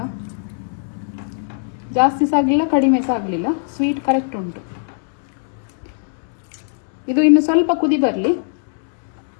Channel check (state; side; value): silent; right; 66 dB below the other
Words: ಜಾಸ್ತಿ ಸಹ ಆಗಲಿಲ್ಲ ಕಡಿಮೆ ಸಹ ಆಗಲಿಲ್ಲ, ಸ್ವೀಟ್ ಕರೆಕ್ಟ್ ಉಂಟು. ಇದು ಇನ್ನು ಸ್ವಲ್ಪ ಕುದಿ